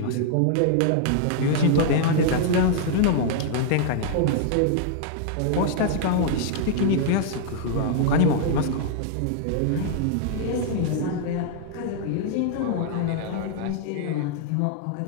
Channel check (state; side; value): different; both; correlation -0.01